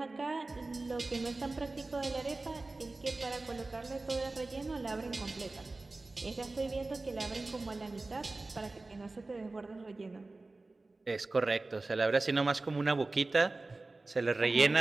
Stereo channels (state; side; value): quieter; left; 3.3 dB